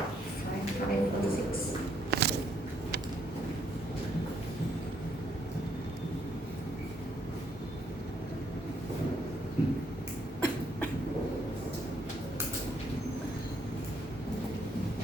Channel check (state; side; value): normal; both; correlation 0.71